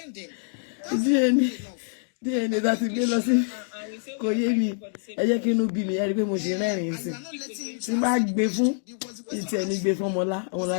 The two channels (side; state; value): right; silent; digital silence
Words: him? DNA that is gbé lọ sí kò yé mi ẹ jẹ́ kí inú bí mi ẹ rí pé mo ṣe rẹ́rìn sí tí máa gbé fún ìtì ẹni gbé fún